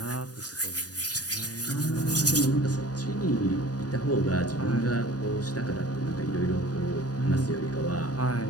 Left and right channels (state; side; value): late; right; 0.68 ms